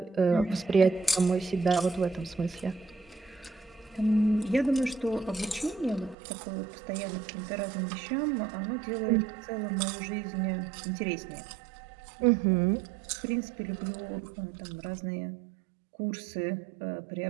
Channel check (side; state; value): left; drops out; at 6.2 s